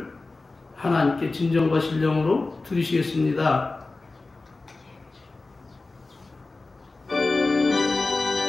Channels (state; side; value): quieter; right; 3.5 dB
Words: 하나님께 진정과 신령으로 드리시겠습니다.